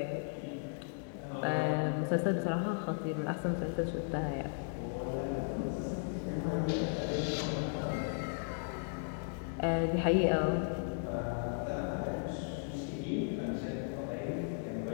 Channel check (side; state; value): right; silent; digital silence